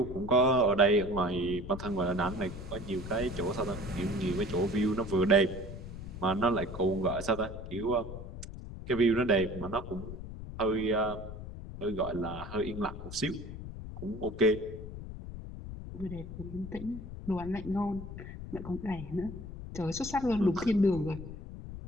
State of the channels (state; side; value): noise; left; rumble, 10 dB below the sound